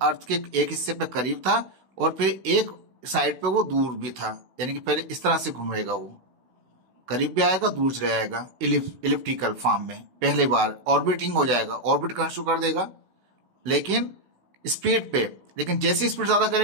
के एक हिस्से पे करीब था और फिर एक साइड पे वो दूर भी था, यानी कि पहले इस तरह से घूमेगा, वो करीब भी आएगा दूर चले जाएगा, इलिप्टिकल फॉर्म में। पहले बार ऑर्बिटिंग हो जाएगा, ऑर्बिट करना शुरू कर देगा लेकिन स्पीड पे, लेकिन जैसी स्पीड ज्यादा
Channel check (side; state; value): left; late; 16 ms